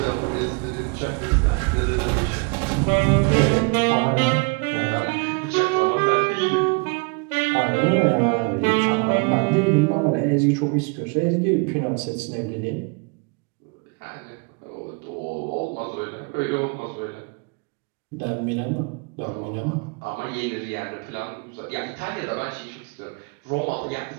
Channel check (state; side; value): quieter; left; 32.4 dB